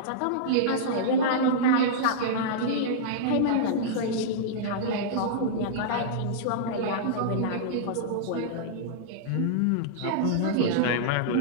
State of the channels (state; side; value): different; both; correlation -0.03